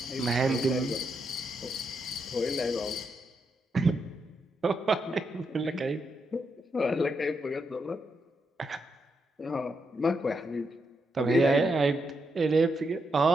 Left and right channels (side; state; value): both; normal; correlation 0.82